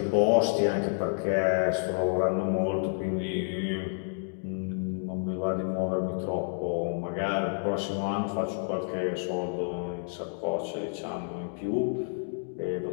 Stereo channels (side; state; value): right; silent; digital silence